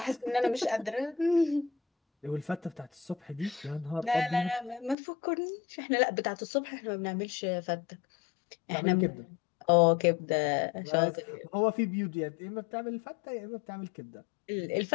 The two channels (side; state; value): right; drops out; at 5.0 s